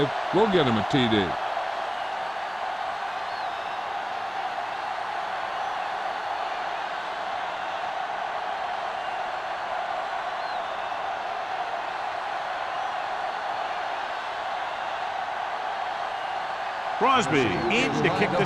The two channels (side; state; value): both; identical; correlation 1.00